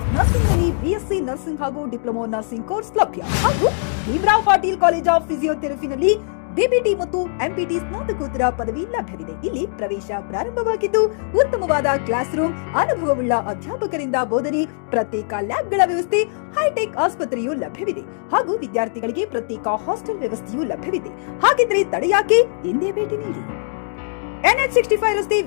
nursing ನಲ್ಲಿ ಬಿಎಸ್ಸಿ ನರ್ಸಿಂಗ್ ಹಾಗೂ ಡಿಪ್ಲೊಮಾ ನರ್ಸಿಂಗ್ ಕೋರ್ಸ್ ಲಭ್ಯ ಹಾಗೂ ಭೀಮರಾವ್ ಪಾಟೀಲ್ ಕಾಲೇಜ್ ಆಫ್ ಫಿಸಿಯೋಥೆರಪಿನಲ್ಲಿ ಬಿಪಿಟಿ ಮತ್ತು ಎಂಪಿಟಿ ಸ್ನಾತಕೋತ್ತರ ಪದವಿ ಲಭ್ಯವಿದೆ. ಇಲ್ಲಿ ಪ್ರವೇಶ ಪ್ರಾರಂಭವಾಗಿದ್ದು, ಉತ್ತಮವಾದ ಕ್ಲಾಸ್ ರೂಮ್, ಅನುಭವವುಳ್ಳ ಅಧ್ಯಾಪಕರಿಂದ ಬೋಧನೆ, ಪ್ರತ್ಯೇಕ ಲ್ಯಾಬ್ಗಳ ವ್ಯವಸ್ಥೆ, ಹೈಟೆಕ್ ಆಸ್ಪತ್ರೆಯೂ ಲಭ್ಯವಿದೆ ಹಾಗೂ ವಿದ್ಯಾರ್ಥಿಗಳಿಗೆ ಪ್ರತ್ಯೇಕ ಹಾಸ್ಟೆಲ್ ವ್ಯವಸ್ಥೆಯೂ ಲಭ್ಯವಿದೆ. ಹಾಗಿದ್ರೆ ತಡೆಯಾಕೆ, ಹಿಂದೆ ಭೇಟಿ ನೀಡಿ. NH65 ರಸ್ತೆ,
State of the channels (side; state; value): right; silent; digital silence